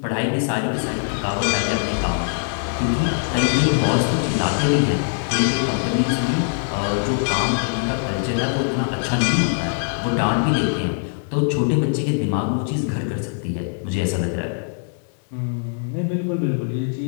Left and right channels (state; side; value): silent; right; digital silence